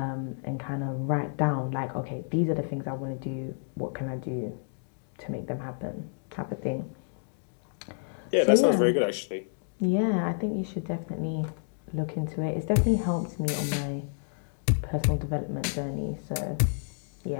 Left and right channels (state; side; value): silent; right; digital silence